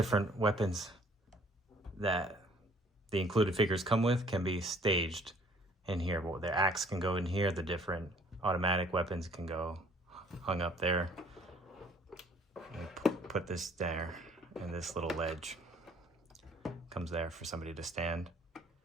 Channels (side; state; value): both; normal; correlation 0.58